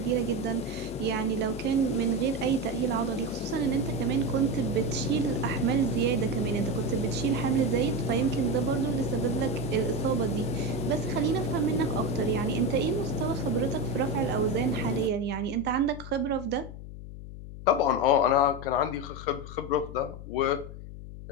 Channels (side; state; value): left; noise; hum, 12 dB below the sound